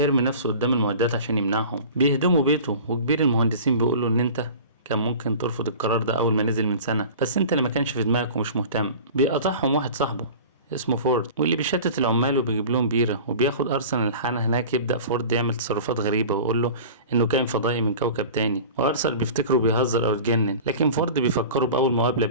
نفسه قدام المعدات عشان يمنعهم. بيهدموا بيته، وكبير المهندسين بيقوله ان انت كان ممكن ترفض القرار ده اول ما نزل من سنة، بس انت اللي ما كانش في دماغك ومش مهتم. بيقطعهم واحد صاحبه اسمه فورد، واللي بيشتت العمال وبيجيب لهم بيرة، وبياخد أرسنال الحانة هناك. يبدأ فورد يعمل تصرفات غريبة ويقول له إنه كائن فضائي من كوكب تاني، وأرسنال بيفتكره بيهزر أو اتجنن، لكن فورد بيفكره بأول مقابلة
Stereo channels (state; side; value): inverted; both; correlation -0.38